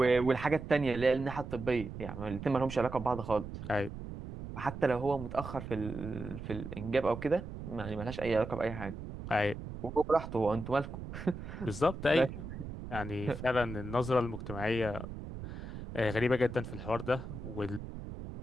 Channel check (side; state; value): right; noise; rumble, 9 dB below the sound